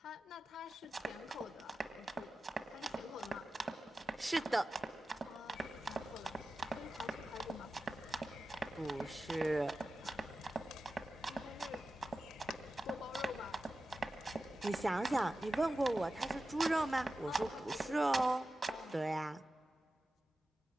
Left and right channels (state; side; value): normal; both; correlation 0.93